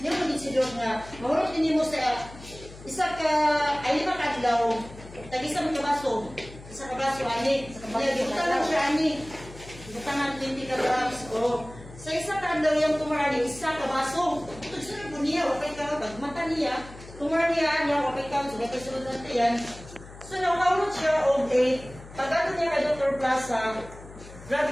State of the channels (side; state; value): left; noise; hum, 17 dB below the sound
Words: niyo magiging si Dok nga, mahulog din mo sa, isa ka, ay 5 kadlaw, tag-isa mo kabaso. Isa kabaso, ani. Gibutan lang siya, ani. Gibutan 20 grams, o. Sa isa ka daw yung tumarani, isa ka baso. Ito sunod po niya, wapay ka, pag mata niya, tumarani niya, wapay ka, sugat ka sunod natin yan. So, nakawalot siya o 8. Pag-ato niya ka Dr. Plaza, grabe